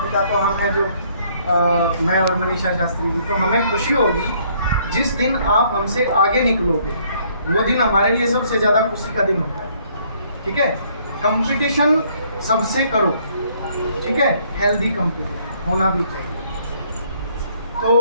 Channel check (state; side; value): inverted; both; correlation -0.65